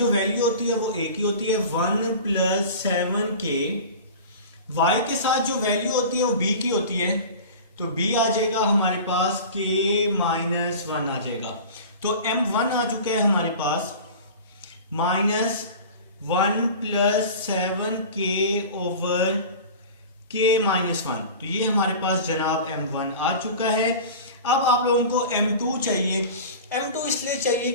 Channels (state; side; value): inverted; both; correlation -0.36